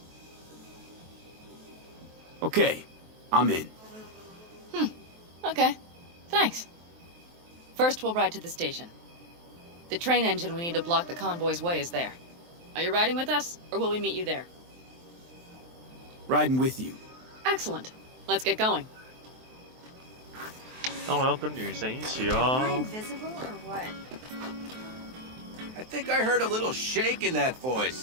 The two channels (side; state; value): left; late; 23 ms